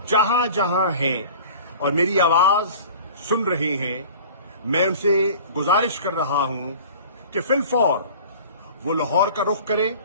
जहां जहां हैं और मेरी आवाज सुन रहे हैं, मैं उनसे गुजारिश कर रहा हूं कि फिलफौर वो लाहौर का रुख करें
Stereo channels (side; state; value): both; inverted; correlation -0.43